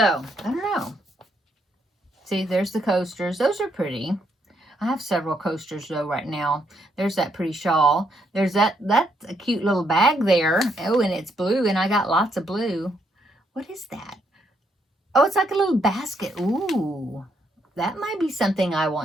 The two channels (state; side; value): normal; both; correlation 0.75